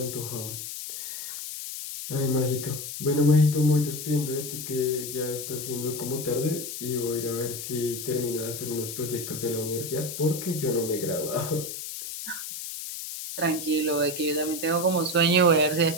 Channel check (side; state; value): left; noise; hiss, 7 dB below the sound